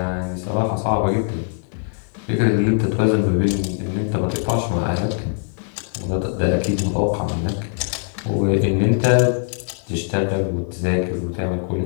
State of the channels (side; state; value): right; silent; 65 dB below the other